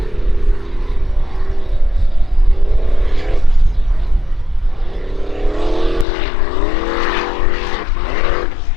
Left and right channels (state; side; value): drops out; right; at 6.1 s